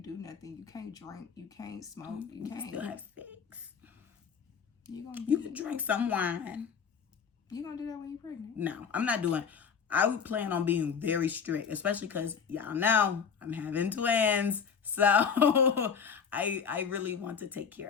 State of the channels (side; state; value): right; quieter; 6.6 dB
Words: do nothing. You can't drink. You can't smoke. You can't. Still have sex. You can drink some wine. You gonna do that when you're pregnant? No, I'm not doing. I would plan on being very strict, especially because y'all know I'm having twins. So I really want to take care